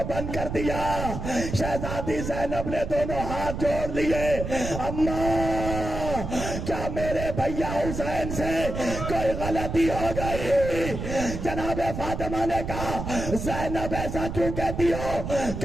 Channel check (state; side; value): noise; right; rumble, 5 dB below the sound